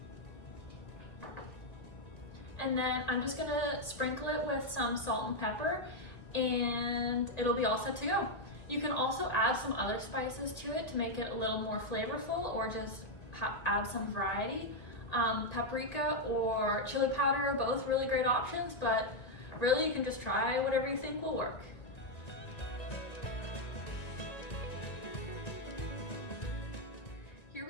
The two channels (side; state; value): right; late; 1.8 ms